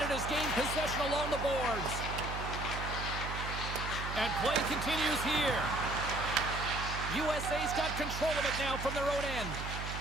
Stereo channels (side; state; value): right; noise; hum, 6 dB below the sound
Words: gained possession along the boards. And play continues here. USA's got control of it now from their own end.